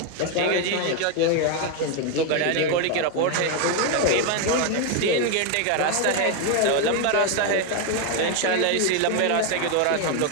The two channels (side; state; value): both; different; correlation 0.01